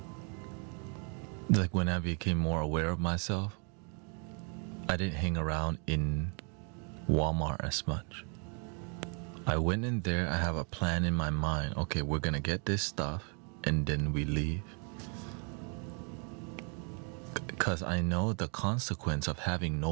Like when I became more aware of myself, I didn't hang around in Walmart as much. I went in there, I have a plan in my mind. Okay, we're gonna get this stuff and then we leave. Because I know the consequence of having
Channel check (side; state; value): left; quieter; 38.6 dB